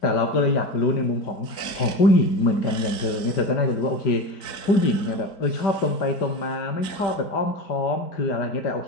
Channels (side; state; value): right; late; 4.0 ms